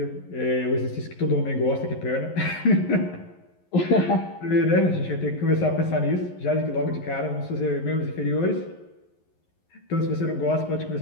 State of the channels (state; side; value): late; right; 11 ms